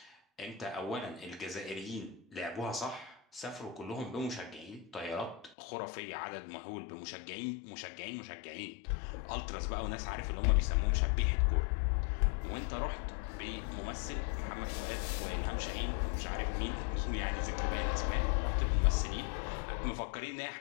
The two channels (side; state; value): right; drops out; at 5.6 s